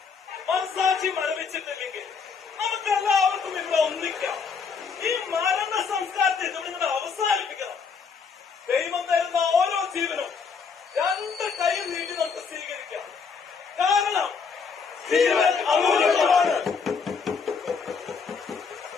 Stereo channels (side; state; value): right; quieter; 5.6 dB